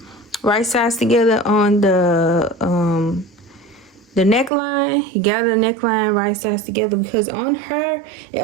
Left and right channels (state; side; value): drops out; left; at 4.5 s